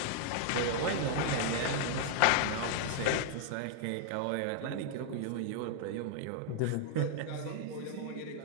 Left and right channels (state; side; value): different; both; correlation -0.01